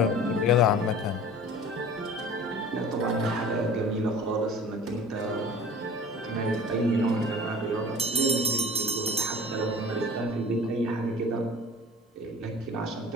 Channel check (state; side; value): normal; both; correlation 0.42